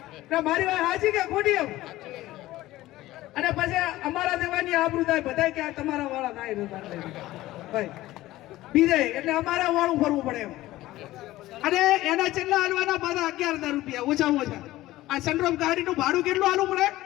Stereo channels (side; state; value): right; quieter; 16.5 dB